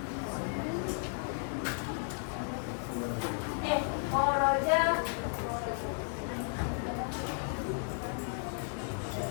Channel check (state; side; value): silent; right; 55 dB below the other